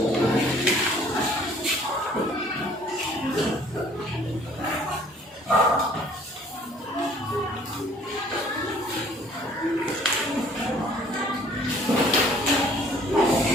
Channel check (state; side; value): normal; both; correlation 0.56